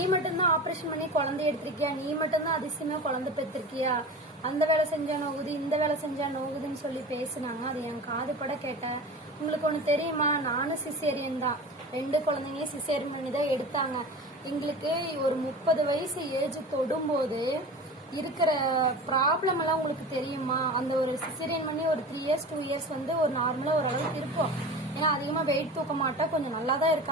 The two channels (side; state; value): both; normal; correlation 0.33